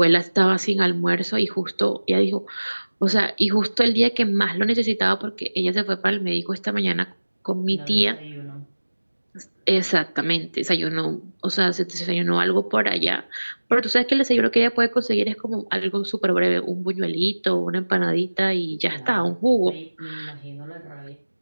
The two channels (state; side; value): inverted; both; correlation -1.00